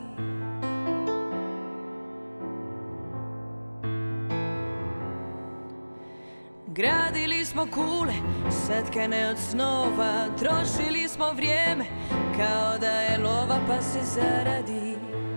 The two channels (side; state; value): both; inverted; correlation -1.00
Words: Gradili smo kule, satkane od snova, trošili smo vrijeme kao da je lova pa se zaradi.